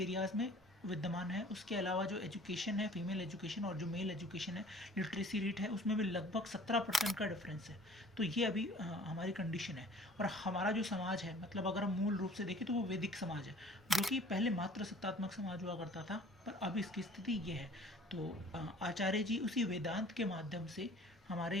में विद्यमान है। उसके अलावा जो एजुकेशन है, फीमेल एजुकेशन और जो मेल एजुकेशन है, लिटरेसी रेट है, उसमें भी लगभग 17% का डिफरेंस है। तो ये अभी हमारी कंडीशन है। और हमारा जो समाज है, मतलब अगर हम मूल रूप से देखें तो वो वैदिक समाज है, जो कि पहले मात्र सत्तात्मक समाज हुआ करता था, पर अब इसकी स्थिति ये है। तो आचार्य जी उसी वेदांत के माध्यम से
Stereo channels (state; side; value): normal; both; correlation 0.50